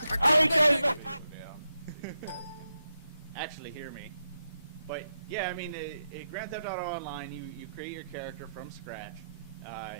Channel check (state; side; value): inverted; both; correlation -0.85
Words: I killed that nigga. Actually, hear me. But yeah, I mean, Grand Theft Auto Online, you create your character from scratch.